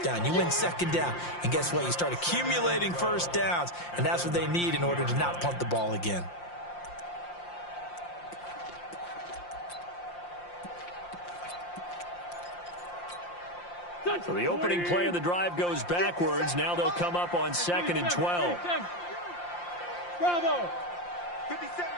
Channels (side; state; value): right; late; 5.7 ms